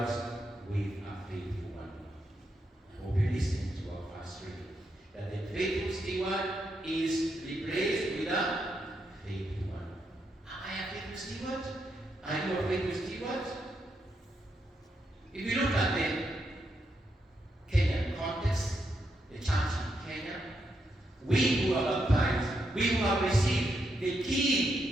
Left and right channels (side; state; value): both; normal; correlation 0.81